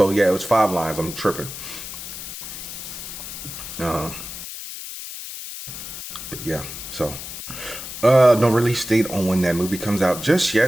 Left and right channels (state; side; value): noise; left; hiss, 9 dB below the sound